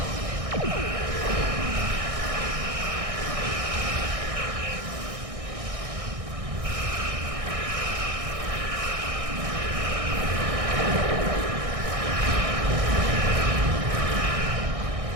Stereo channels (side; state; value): left; late; 1.6 ms